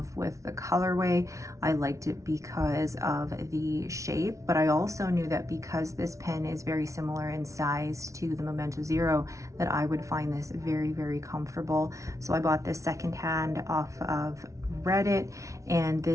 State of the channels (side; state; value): left; late; 0.15 ms